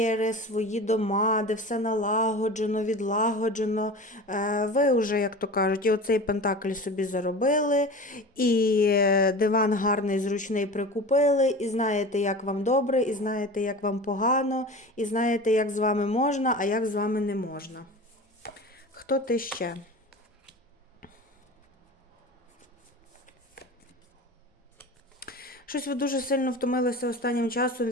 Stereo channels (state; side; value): normal; both; correlation 0.34